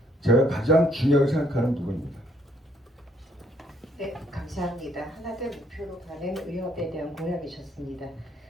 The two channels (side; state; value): both; normal; correlation 0.68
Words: 제가 가장 중요하게 생각하는 부분입니다. 네, 감사합니다. 하나된 목표로 가는 의협에 대한 공약이셨습니다.